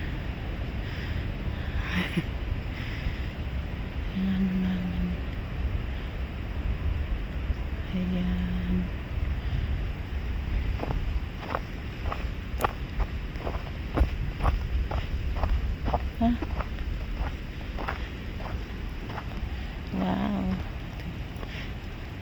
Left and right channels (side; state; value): both; identical; correlation 1.00